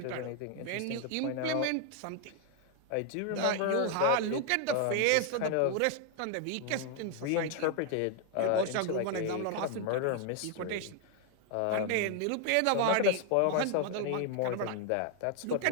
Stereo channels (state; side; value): different; both; correlation 0.00